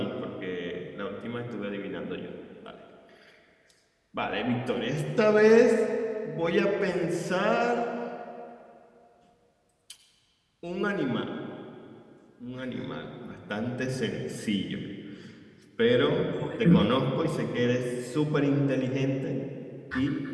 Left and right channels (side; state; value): both; identical; correlation 1.00